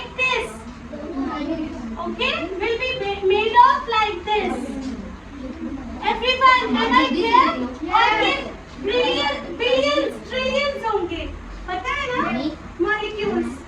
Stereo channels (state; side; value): identical; both; correlation 1.00